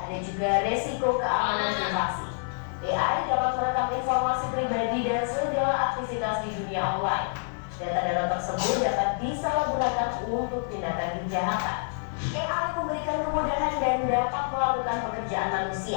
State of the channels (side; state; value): right; silent; digital silence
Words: juga resiko keamanan privasi. AI dapat merekam informasi pribadi dan segala aktivitas di dunia online. Data-data tersebut dapat disalahgunakan untuk tindakan kejahatan. AI memberikan kemudahan dan dapat melakukan pekerjaan